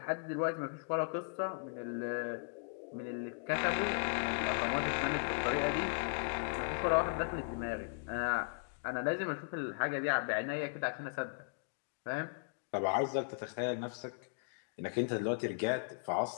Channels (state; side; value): silent; right; digital silence